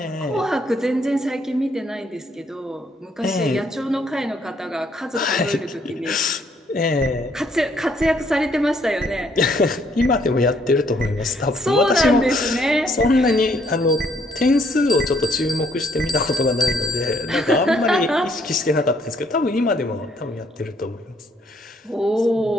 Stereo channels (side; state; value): both; normal; correlation 0.67